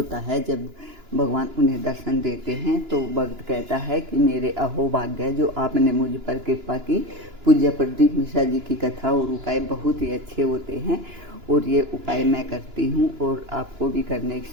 है जब भगवान उन्हें दर्शन देते हैं। तो भक्त कहता है कि मेरे अहोभाग्य जो आपने मुझ पर कृपा की। पूज्य प्रदीप मिश्रा जी की कथा और उपाय बहुत ही अच्छे होते हैं, और ये उपाय मैं करती हूँ और आपको भी करने की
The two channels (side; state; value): left; late; 2.9 ms